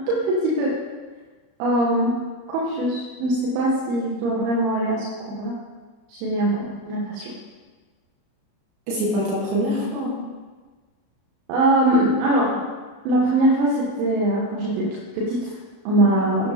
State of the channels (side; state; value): left; late; 31 ms